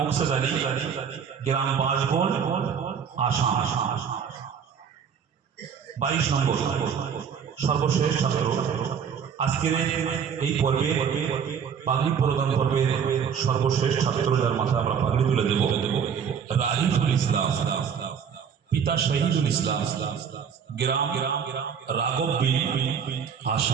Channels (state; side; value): quieter; left; 7.3 dB